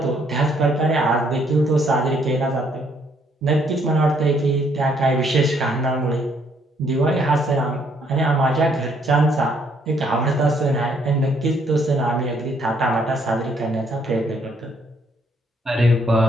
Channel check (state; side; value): normal; both; correlation 0.68